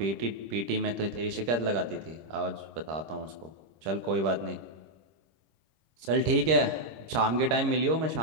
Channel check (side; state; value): left; late; 25 ms